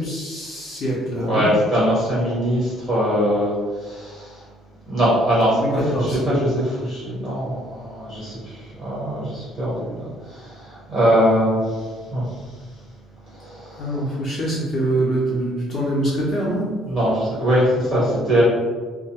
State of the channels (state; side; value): normal; both; correlation 0.65